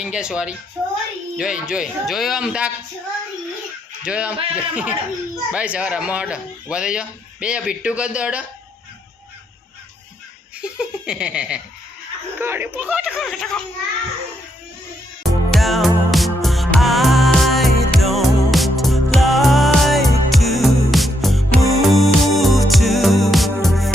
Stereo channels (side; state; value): both; normal; correlation 0.77